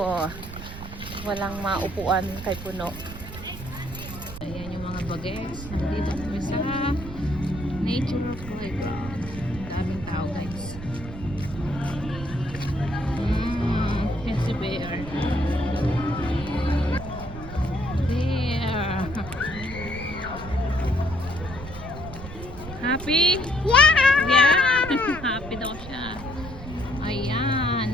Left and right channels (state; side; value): noise; right; rumble, 11 dB below the sound